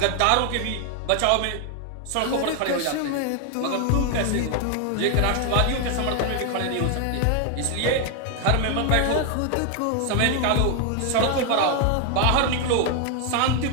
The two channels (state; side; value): different; both; correlation 0.01